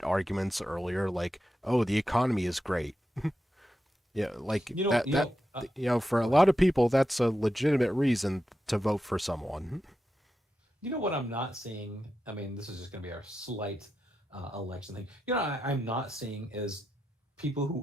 arguments earlier, like, oh, the economy is great. Yeah, like for a lot of people, that's a legitimate reason to vote for someone. You know what I'm not seeing? I mean, this is just going to be our slight election thing. You know, I'm not seeing is people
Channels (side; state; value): both; normal; correlation 0.88